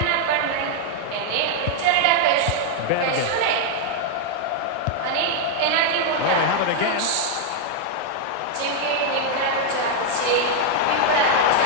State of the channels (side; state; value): both; different; correlation 0.00